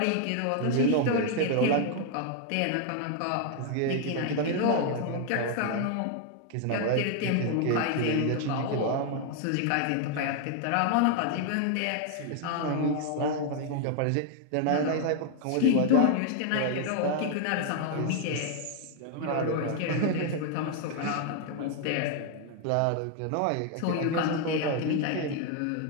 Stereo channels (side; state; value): both; different; correlation 0.00